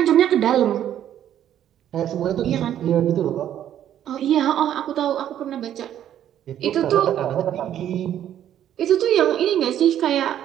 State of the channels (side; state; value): left; quieter; 10.8 dB